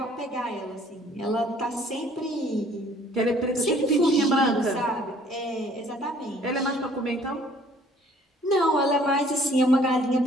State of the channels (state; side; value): normal; both; correlation 0.57